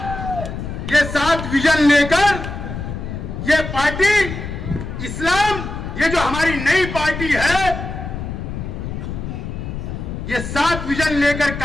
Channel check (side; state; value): left; noise; rumble, 7 dB below the sound